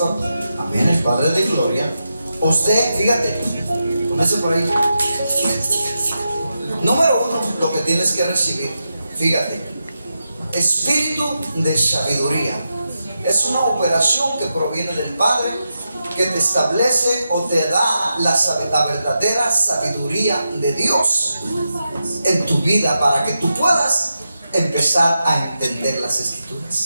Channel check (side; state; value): both; inverted; correlation -0.88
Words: Amén, el Padre de gloria. Usted, fíjate, comience por ahí. Número 1, lo que tienes que recibir, fíjate, espíritu de sabiduría. Es una operación que proviene del Padre, que te establece o te da la verdadera sabiduría de Dios en tu vida para que tú puedas empezar a entender las